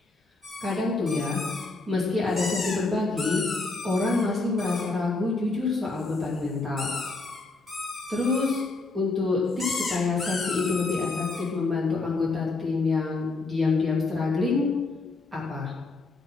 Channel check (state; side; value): quieter; right; 3.5 dB